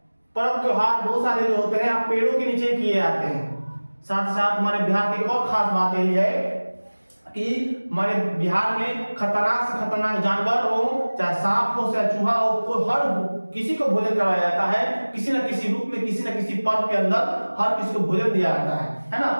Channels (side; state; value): both; inverted; correlation -1.00